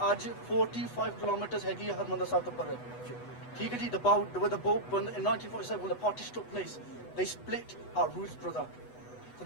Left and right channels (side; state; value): right; late; 8.1 ms